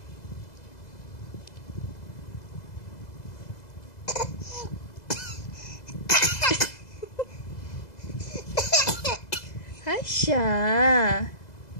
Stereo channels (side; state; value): right; late; 2.0 ms